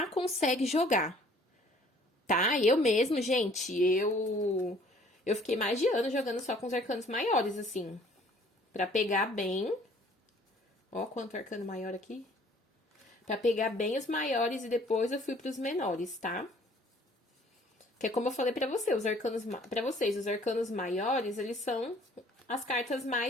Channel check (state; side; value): normal; both; correlation 0.56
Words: consegue jogar. Tá? Eu mesmo, gente, eu fiquei mais de ano jogando só com os arcanos maiores, assim. Pra pegar bem. Ó, quanto arcano maior aqui. Pra pegar bem os maiores e depois eu fui pros menores, tá? Que é como eu falei pra você, pra vocês, os arcanos maiores, eles são as cartas